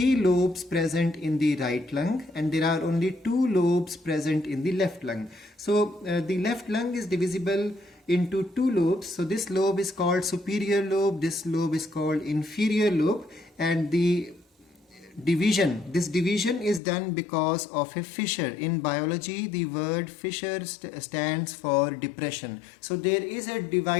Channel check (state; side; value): drops out; right; at 16.8 s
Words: lobes present in the right lung and there are only 2 lobes present in the left lung. So the left lung is divisible into 2 lobes. So this lobe is called superior lobe, this lobe is called inferior lobe, and this division is done because of a fissure. In biology, the word fissure stands for depression. So there is a